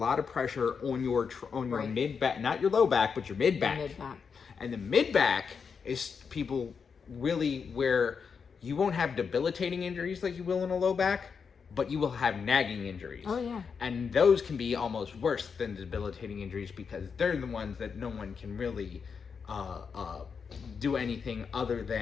of pressure on your mid back, not your low back, but your mid back. And the mid back is people really where you won't have debilitating injuries like you will in a low back, but you will have nagging injuries. Oh yeah. And those can be almost worse than debilitating injuries, because they're the ones that no one can really do anything other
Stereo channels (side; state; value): right; quieter; 6.0 dB